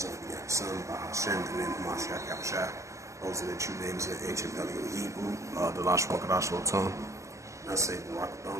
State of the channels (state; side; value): late; left; 0.15 ms